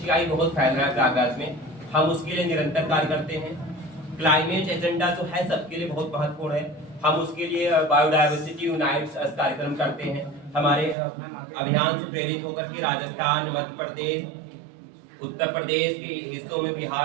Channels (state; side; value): drops out; left; at 11.0 s